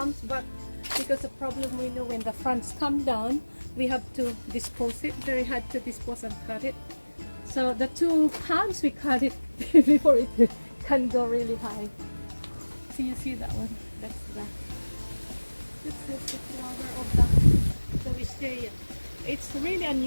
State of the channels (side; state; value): both; inverted; correlation -1.00